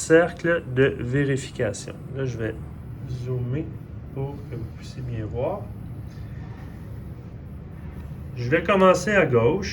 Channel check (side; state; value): both; identical; correlation 1.00